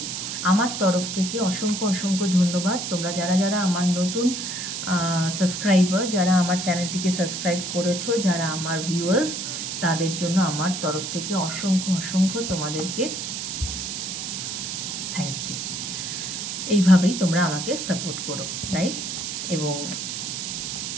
আমার তরফ থেকে অসংখ্য অসংখ্য ধন্যবাদ। তোমরা যারা যারা আমার নতুন সাবস্ক্রাইবার, যারা আমার চ্যানেলটিকে সাবস্ক্রাইব করেছো, যারা আমার ভিউয়ার্স, তাদের জন্য আমার তরফ থেকে অসংখ্য অসংখ্য তোমাদেরকে থ্যাংক ইউ। এইভাবেই তোমরা আমাকে সাপোর্ট করো, রাইট? এবং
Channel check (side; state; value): right; noise; hiss, 4 dB below the sound